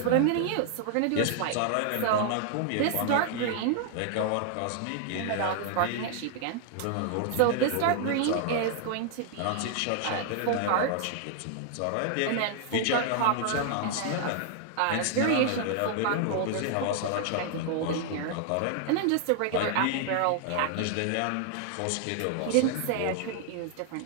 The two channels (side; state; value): both; different; correlation 0.00